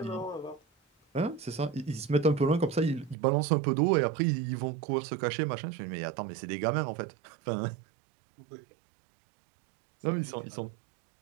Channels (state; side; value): drops out; left; at 3.2 s